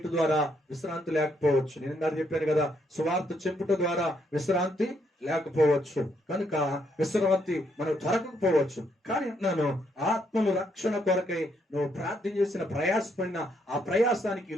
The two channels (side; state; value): both; normal; correlation 0.74